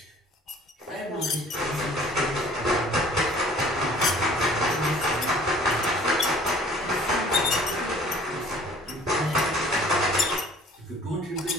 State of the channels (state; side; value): normal; both; correlation 0.52